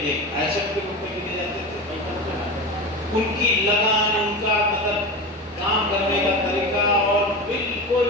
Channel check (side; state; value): both; normal; correlation 0.26